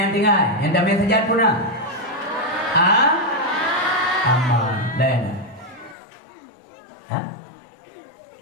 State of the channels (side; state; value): right; drops out; at 6.0 s